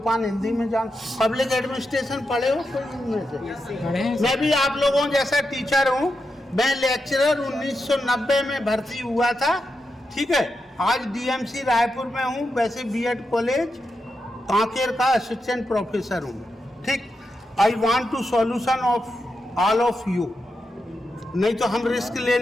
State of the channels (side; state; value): both; normal; correlation 0.87